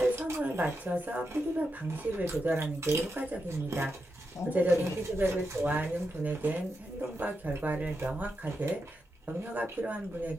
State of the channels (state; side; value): normal; both; correlation 0.86